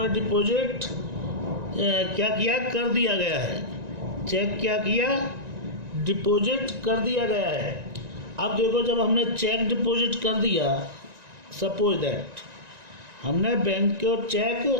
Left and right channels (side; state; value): left; late; 1.9 ms